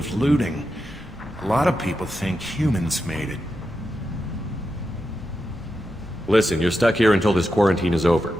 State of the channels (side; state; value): both; normal; correlation 0.88